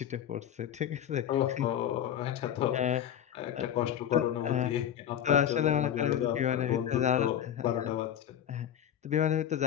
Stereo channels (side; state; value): right; quieter; 10.1 dB